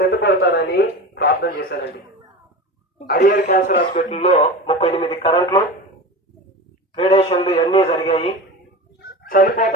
ప్రార్థన చేశానండి. అడియర్ క్యాన్సర్ హాస్పిటల్లో 38 కరెంట్లు, రేడియేషన్లు ఇవన్నీ జరిగాయి.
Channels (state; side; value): normal; both; correlation 0.29